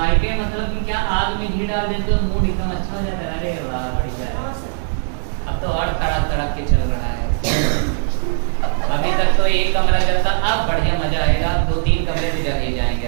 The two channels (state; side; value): silent; left; digital silence